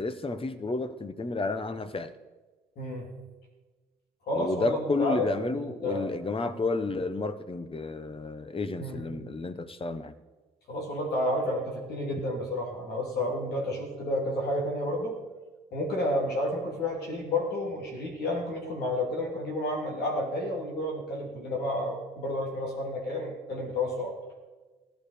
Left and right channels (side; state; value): both; normal; correlation 0.49